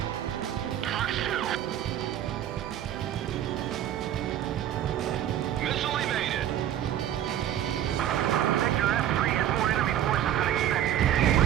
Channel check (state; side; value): quieter; left; 11.4 dB